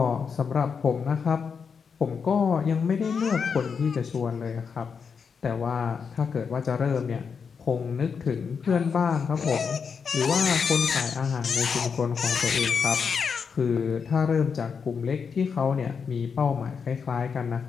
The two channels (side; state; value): right; quieter; 6.1 dB